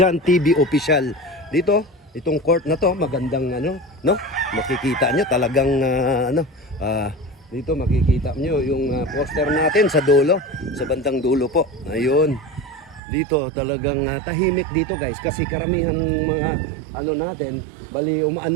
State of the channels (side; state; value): left; drops out; at 13.0 s